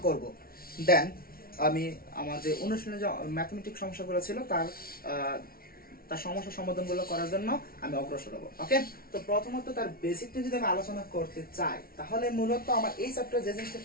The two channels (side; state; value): right; late; 0.43 ms